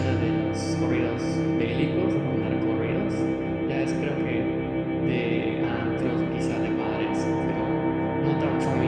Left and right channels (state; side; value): noise; right; hum, 28 dB below the sound